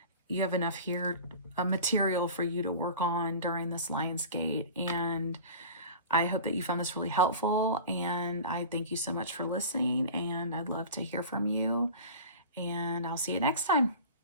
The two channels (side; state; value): both; inverted; correlation -0.36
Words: you have enough here, material for you to work on during this LionsGate. And I hope that you found this really helpful, and I thank you so much for listening, and I'd love to hear from you, and I'll see you next time.